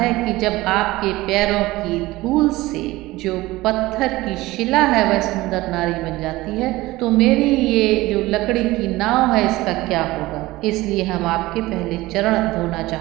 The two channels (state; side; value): quieter; left; 18.9 dB